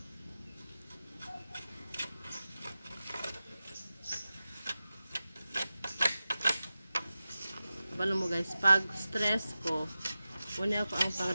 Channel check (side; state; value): both; inverted; correlation -0.93